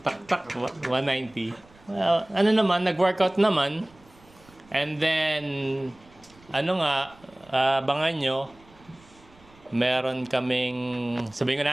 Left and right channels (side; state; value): right; noise; rumble, 27 dB below the sound